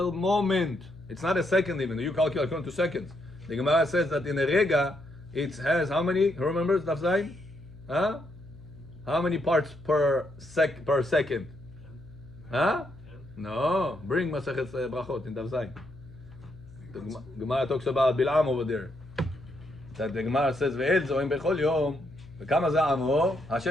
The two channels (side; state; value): left; noise; hum, 20 dB below the sound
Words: moment. It's not a second even. You calculate according to seconds. The Gemara says that in a rega, it has how many? Who remembers Daf Zayin? Huh? How many parts per second? Huh? No. Bring Masachet Brachot in Daf Zayin. The Gemara talks about Bil'am over there. That the Gemara says, "Ve'el zoim bechol yom, v'kama za'amo."